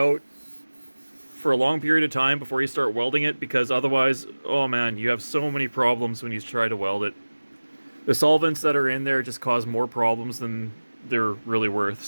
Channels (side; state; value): both; inverted; correlation -1.00